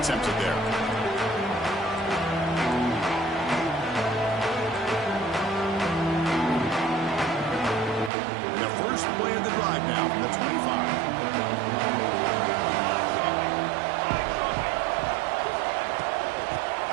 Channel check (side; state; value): left; drops out; at 8.1 s